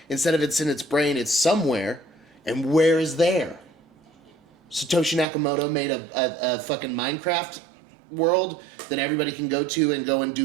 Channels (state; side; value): drops out; left; at 5.2 s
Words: instead of it's in its brain, it's somewhere. And where is there? Satoshi Nakamoto made a fucking Minecraft world that everybody can go to and go and